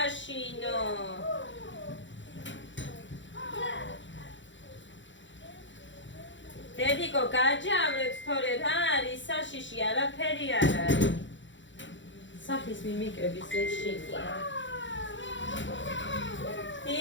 დედიკო, გაჯავრებს თორე რა არის? საშიში არაფერი არ არის. სახის მიმიკების ეშინია.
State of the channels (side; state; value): right; late; 0.54 ms